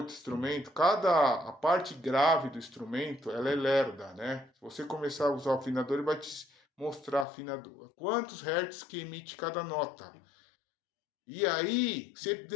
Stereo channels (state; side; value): drops out; right; at 7.2 s